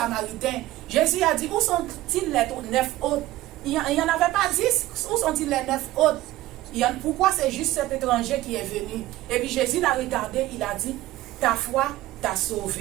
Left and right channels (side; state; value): left; quieter; 16.4 dB